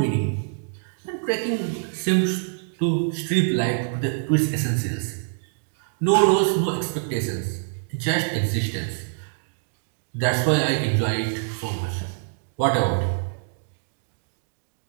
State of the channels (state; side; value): silent; left; digital silence